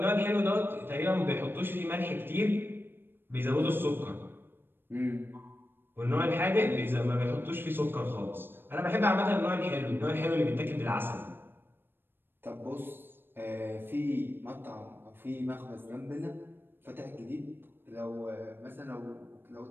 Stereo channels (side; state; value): left; late; 0.099 ms